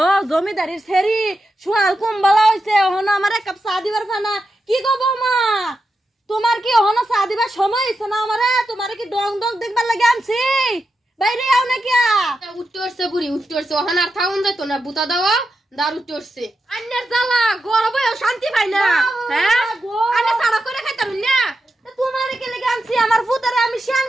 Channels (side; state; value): both; normal; correlation 0.88